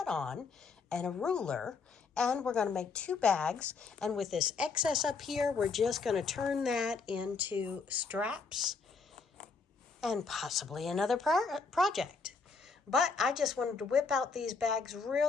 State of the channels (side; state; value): right; quieter; 4.7 dB